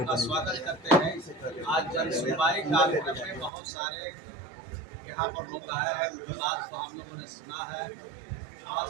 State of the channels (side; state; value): left; drops out; at 3.5 s